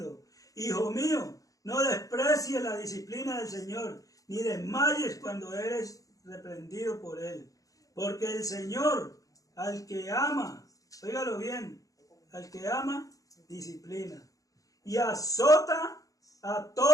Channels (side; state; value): right; late; 0.17 ms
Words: hijo mío, no desprecies la disciplina del Señor, ni desmayes cuando eres reprendido por Él. Porque el Señor, al que ama, óigalo bien, al que ama, disciplina. Y azota a